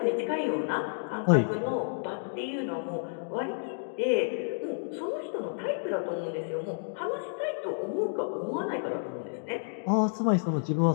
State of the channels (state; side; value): silent; right; digital silence